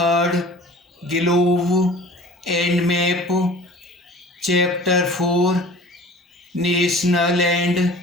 Globe and Map, Chapter 4, National and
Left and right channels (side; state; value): both; normal; correlation 0.44